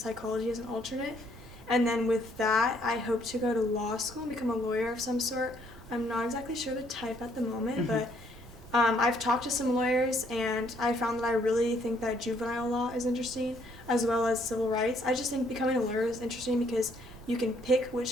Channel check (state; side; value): normal; both; correlation 0.67